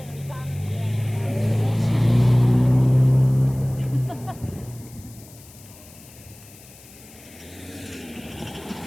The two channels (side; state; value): left; noise; hiss, 22 dB below the sound